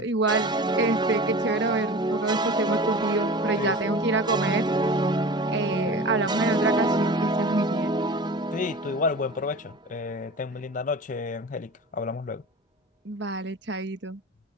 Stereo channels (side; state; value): both; normal; correlation 0.35